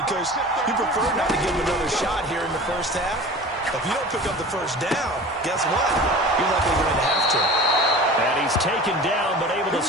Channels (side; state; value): both; normal; correlation 0.38